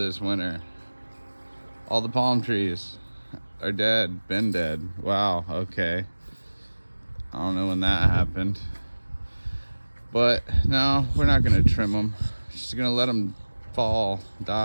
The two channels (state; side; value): inverted; both; correlation -1.00